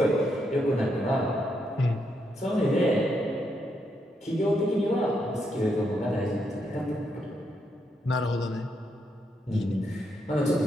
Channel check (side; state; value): both; normal; correlation 0.79